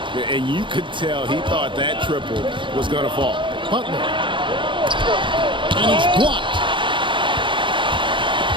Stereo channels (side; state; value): left; late; 0.24 ms